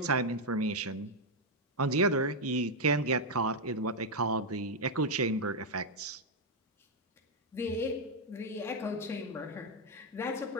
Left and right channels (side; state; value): both; normal; correlation 0.00